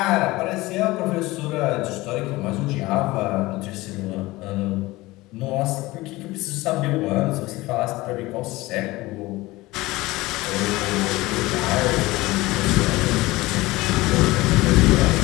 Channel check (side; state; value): right; quieter; 19.9 dB